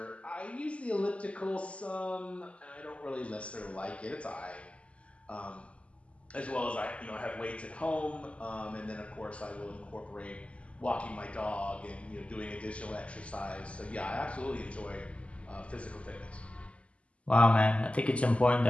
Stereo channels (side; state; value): right; late; 0.060 ms